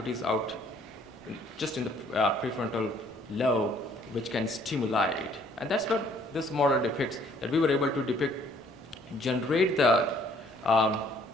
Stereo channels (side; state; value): both; normal; correlation 0.61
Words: out just in the prefrontal lobe, which can stimulate? And that's what this model depicts, that we were able to generate the